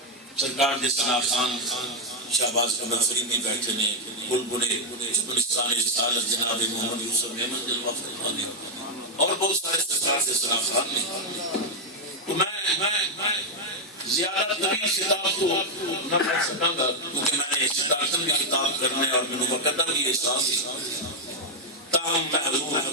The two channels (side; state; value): both; normal; correlation 0.02